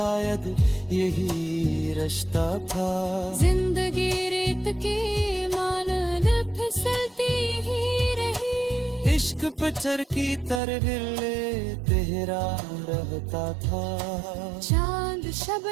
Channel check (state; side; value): drops out; left; at 10.6 s